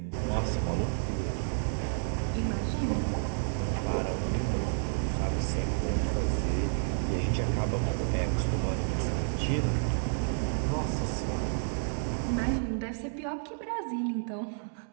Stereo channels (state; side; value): silent; left; digital silence